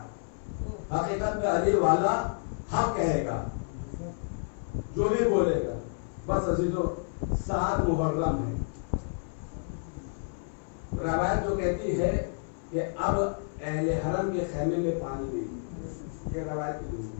حقیقت میں علی والا حق کہے گا جو بھی بولے گا. بس عزیزو 7 محرم ہے. روایت جو کہتی ہے کہ اب اہل حرم کے خیمے میں پانی نہیں. یہ روایت کی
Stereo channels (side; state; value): right; silent; 58 dB below the other